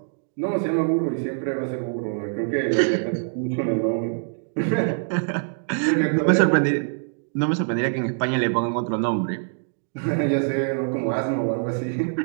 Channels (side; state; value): left; silent; digital silence